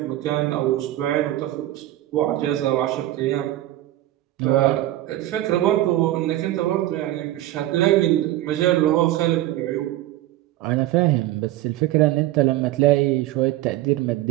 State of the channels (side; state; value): left; quieter; 15.0 dB